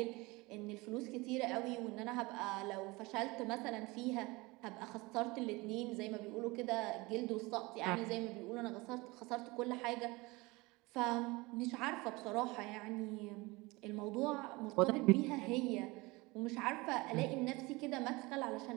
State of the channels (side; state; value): left; quieter; 23.3 dB